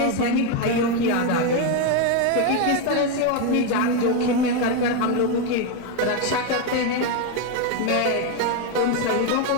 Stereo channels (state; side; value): different; both; correlation 0.02